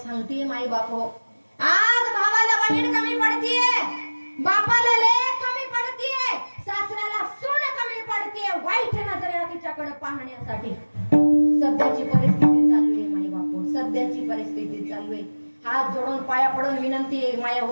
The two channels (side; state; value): both; inverted; correlation -1.00